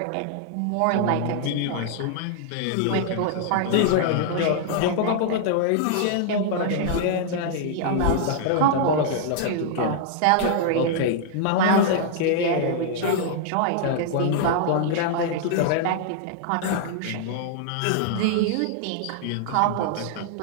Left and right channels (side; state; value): both; different; correlation -0.01